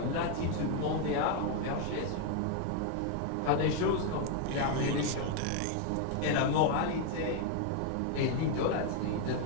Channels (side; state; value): both; different; correlation 0.01